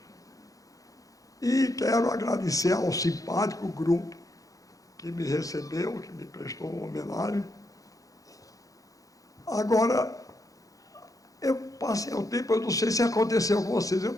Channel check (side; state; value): right; late; 0.17 ms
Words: E quero agradecer ao simpático grupo que me recebeu, que me prestou uma homenagem. Agora, eu passei o tempo, eu não sei se aconteceu com vocês, eu